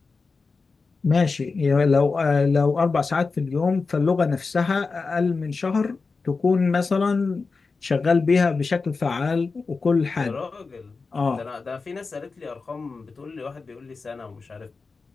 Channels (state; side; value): quieter; right; 4.3 dB